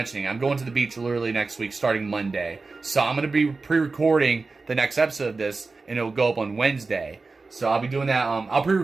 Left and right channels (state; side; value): quieter; left; 3.9 dB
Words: it. I'm going to the beach literally next week, starting Monday. So I'm going to be pre-recording the next episode of this, and it will go up on Wednesday. So I'll be doing that. I'll